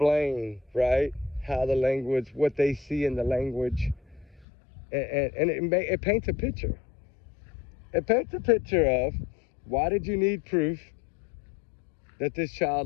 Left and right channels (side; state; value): right; drops out; at 4.5 s